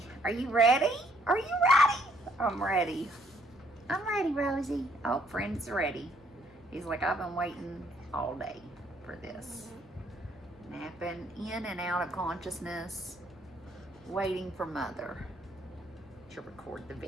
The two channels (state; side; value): normal; both; correlation 0.67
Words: Are you ready? Are you ready? I'm ready. I'm ready, Rosie. Oh, friend's ready. He's like, I've been waiting all day for this. Napping in and out of consciousness, waiting for mother to record the